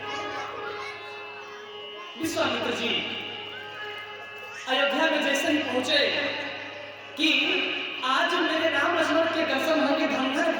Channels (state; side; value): identical; both; correlation 1.00